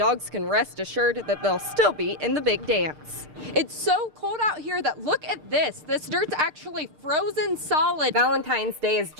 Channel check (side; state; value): left; late; 6.6 ms